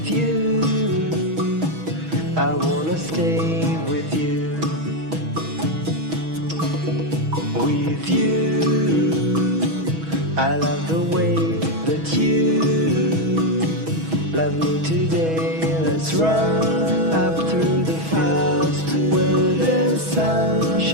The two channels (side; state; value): left; late; 6.2 ms